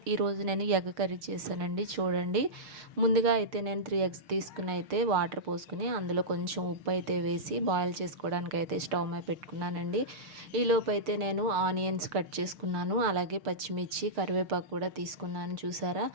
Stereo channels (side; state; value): left; late; 6.5 ms